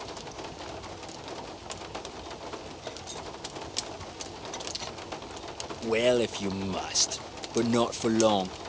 Well, if you must. But not for long.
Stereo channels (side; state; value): both; identical; correlation 1.00